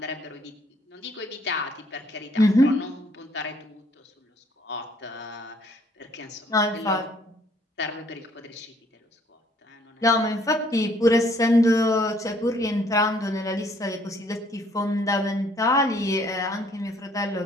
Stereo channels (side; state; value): both; normal; correlation 0.63